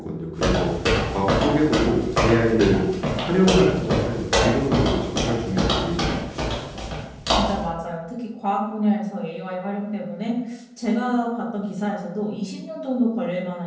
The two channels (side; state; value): both; identical; correlation 1.00